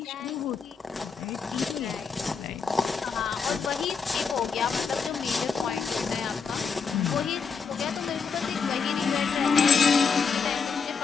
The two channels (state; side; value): quieter; right; 5.6 dB